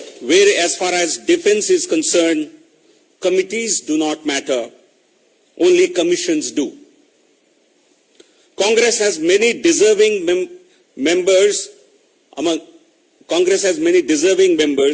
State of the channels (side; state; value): both; identical; correlation 1.00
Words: where, as far as defence is concerned, committees do not matter, only commissions do. Congress has many deserving members